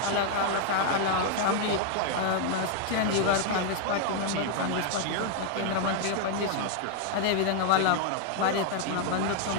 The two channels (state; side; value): different; both; correlation 0.00